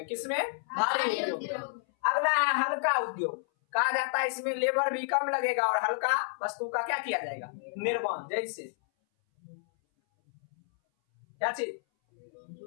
किसमें? भारी उद्योग में। अगला है हल्का उद्योग। कहा जाता है इसमें लेबर भी कम लगेगा और हल्का वस्तु का क्या किया जाएगा? निर्माण। जैसे क्या चीज?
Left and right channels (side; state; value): right; silent; 57 dB below the other